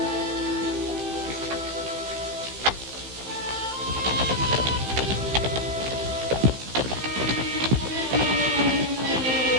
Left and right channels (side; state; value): left; late; 15 ms